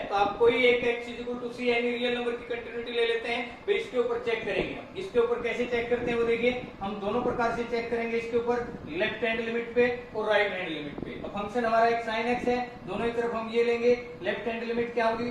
तो आप कोई एक एक्स इज इक्वल टू सी यानी रियल नंबर की कंटिन्यूटी ले लेते हैं, फिर इसके ऊपर चेक करेंगे। हम इसके ऊपर कैसे चेक करते हैं वो देखिए, हम दोनों प्रकार से चेक करेंगे इसके ऊपर, लेफ्ट हैंड लिमिट पे और राइट हैंड लिमिट पे। अब फंक्शन हमारा एक साइन एक्स है, दोनों ही तरफ हम ये लेंगे, लेफ्ट हैंड लिमिट क्या होगी,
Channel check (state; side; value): identical; both; correlation 1.00